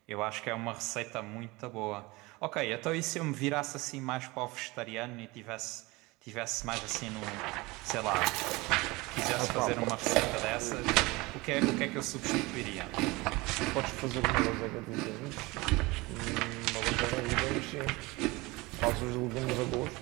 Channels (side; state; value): left; quieter; 22.9 dB